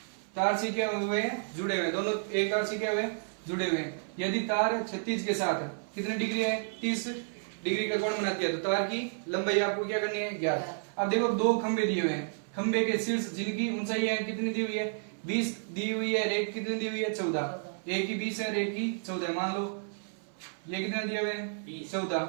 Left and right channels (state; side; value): silent; left; 57 dB below the other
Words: से क्या हुए हैं, जुड़े हुए, दोनों एक तार से क्या हुए, जुड़े हुए हैं। यदि तार क्षैतिज के साथ कितने डिग्री है, 30 डिग्री का कोण बनाती है, तो तार की लंबाई आपको क्या करनी है, ज्ञात। अब देखो दो खंबे दिए हुए हैं, खंबे के शीर्ष जिनकी ऊंचाई है कितनी दी हुई है, 20 दी हुई है, एक कितनी दी हुई है, 14। एक की 20 है, एक की 14। मान लो ये कितना दिया हुआ है, 14,